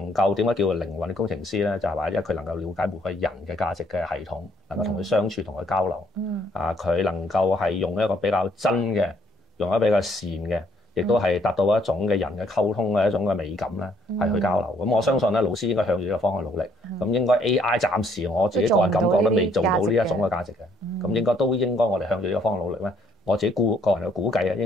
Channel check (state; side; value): normal; both; correlation 0.67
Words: 夠點解叫做靈魂嘅工程師咧？就係話因為佢能夠了解每個人嘅價值嘅系統，能夠同佢相處、同佢交流。佢能夠係用一個比較真嘅，用一個比較善嘅，亦都係達到一種嘅人嘅溝通嘅一種嘅美感咧，係去交流。咁我相信咧，老師應該向住呢個方向努力。咁應該 AI 暫時我自己個人感覺都未做到呢一種嘅價值嘅。咁應該我哋向住呢個方向努力咧。我自己個人嘅估計啊，